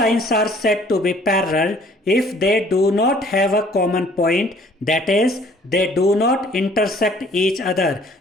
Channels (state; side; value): normal; both; correlation 0.57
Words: are said to be parallel if they do not have a common point, that is they do not intersect each other.